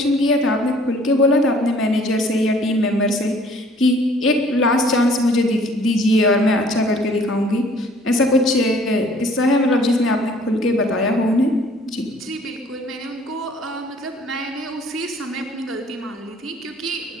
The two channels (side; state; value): both; normal; correlation 0.55